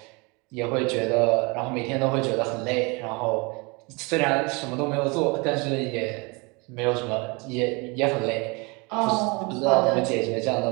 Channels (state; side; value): quieter; left; 28.3 dB